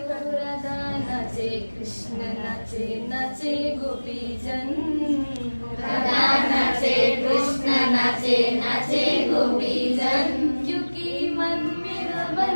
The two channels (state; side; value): inverted; both; correlation -1.00